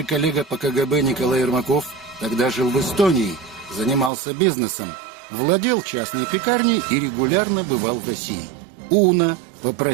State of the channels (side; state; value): left; drops out; at 4.1 s